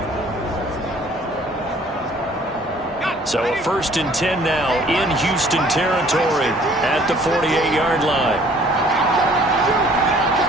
So a 1st and 10 now in Houston territory at the 48-yard line.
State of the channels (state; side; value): normal; both; correlation 0.56